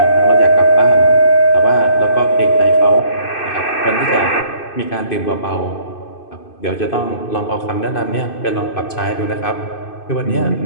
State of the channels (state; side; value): late; right; 2.6 ms